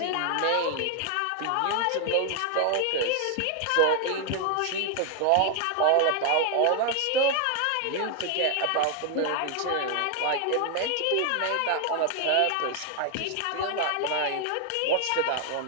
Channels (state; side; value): different; both; correlation 0.00